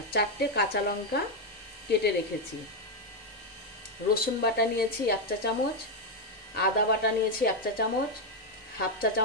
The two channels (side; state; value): both; normal; correlation 0.03